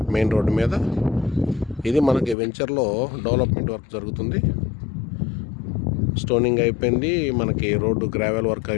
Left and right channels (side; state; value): right; drops out; at 2.4 s